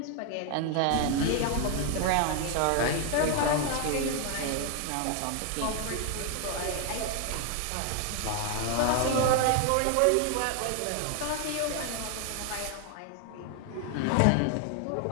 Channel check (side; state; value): both; different; correlation 0.00